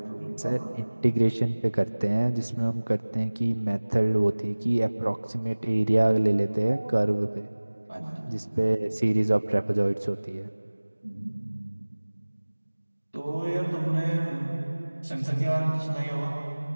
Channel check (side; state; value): both; inverted; correlation -1.00